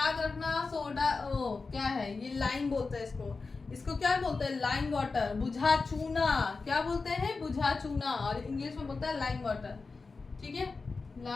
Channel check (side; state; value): right; quieter; 4.2 dB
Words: रखना, सोडा क्या है, ये लाइम बोलते हैं इसको क्या बोलते हैं, लाइम वाटर, बुझा चूना, क्या बोलते हैं, बुझा चूना, और इंग्लिश में बोलता है लाइम वाटर, ठीक है,